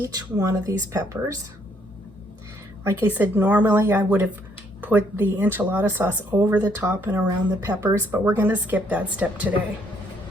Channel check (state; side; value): normal; both; correlation 0.68